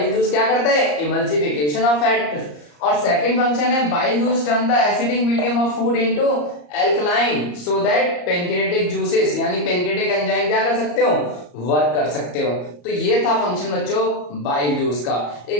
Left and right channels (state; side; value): late; right; 34 ms